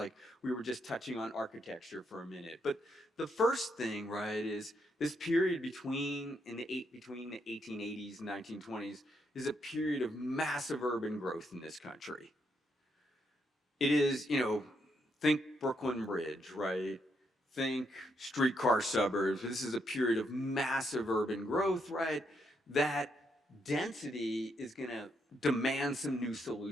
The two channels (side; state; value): both; normal; correlation 0.78